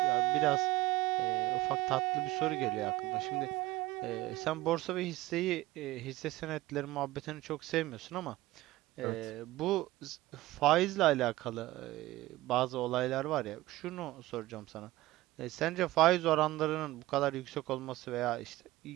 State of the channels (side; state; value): left; quieter; 17.7 dB